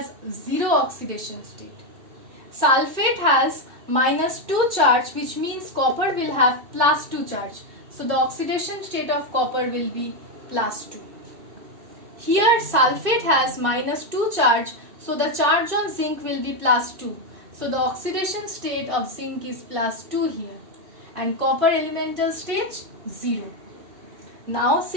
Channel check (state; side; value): late; left; 2.7 ms